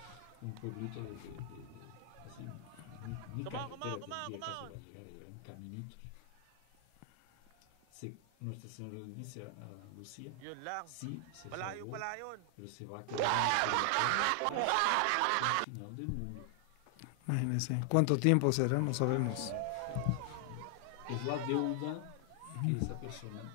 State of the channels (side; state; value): both; different; correlation 0.00